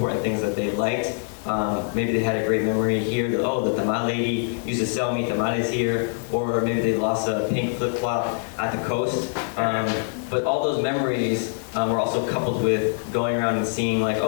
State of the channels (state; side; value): silent; right; 58 dB below the other